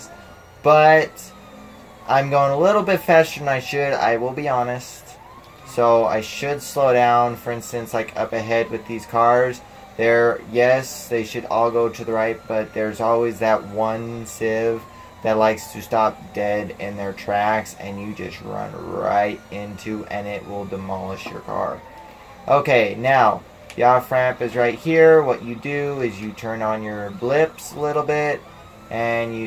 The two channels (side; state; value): both; identical; correlation 1.00